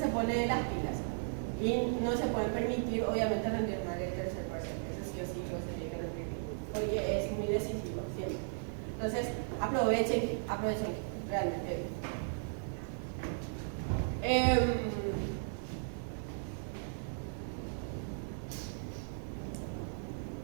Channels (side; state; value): left; silent; digital silence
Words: pone las pilas y no se puede permitir obviamente rendir mal el tercer parcial, eso sí o sí lo se tiene que rendir porque es muy decisivo siempre. Entonces, aprovechen realmente.